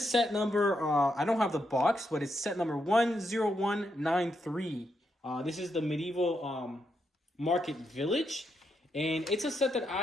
set number. I don't have the box, but it's set number 10193. This is the Medieval Market Village, and it's a set that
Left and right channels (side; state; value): both; normal; correlation 0.81